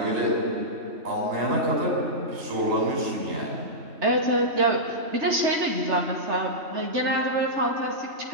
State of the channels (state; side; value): late; left; 3.3 ms